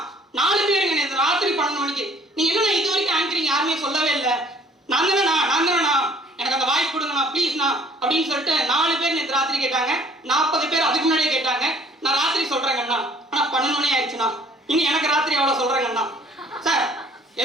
4 பேருங்க நேற்று ராத்திரி 12 மணிக்கு நீங்க என்ன இது வரைக்கும் ஆங்கரிங் யாருமே சொல்லவே இல்லை, நான் தானேண்ணா எனக்கு அந்த வாய்ப்பு கொடுங்கண்ணா ப்ளீஸ்ண்ணா அப்படின்னு சொல்லிட்டு 4 பேர் நேற்று ராத்திரி கேட்டாங்க. 40 பேர் அதுக்கு முன்னாடியே கேட்டாங்க. நான் ராத்திரி சொல்றேங்கண்ணா, ஆனா 12 மணி ஆயிடுச்சுண்ணா, இனி எனக்கு ராத்திரி அவ்வளவு சொல்றேங்கண்ணா. சார்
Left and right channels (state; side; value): normal; both; correlation 0.56